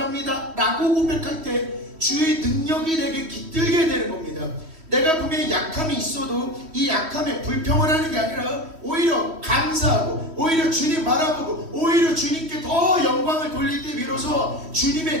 합니다 라고 고백할 때 주의 능력이 내게 깃들게 되는 겁니다. 내가 분명히 약함이 있어도 이 약함에 불평을 하는 게 아니라 오히려 감사하고, 오히려 주님 바라보고, 오히려 주님께 더 영광을 돌릴 때 비로소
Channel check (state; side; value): late; left; 3.1 ms